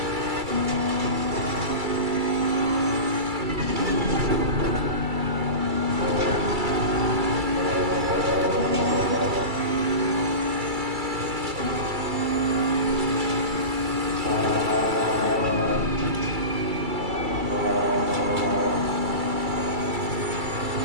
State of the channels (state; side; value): late; left; 2.3 ms